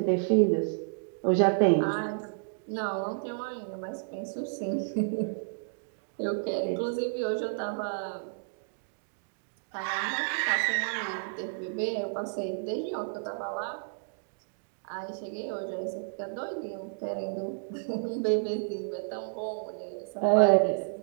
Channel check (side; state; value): left; silent; digital silence